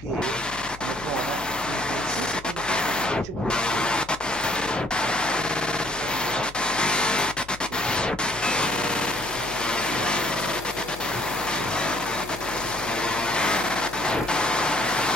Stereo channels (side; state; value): left; noise; hum, 17 dB below the sound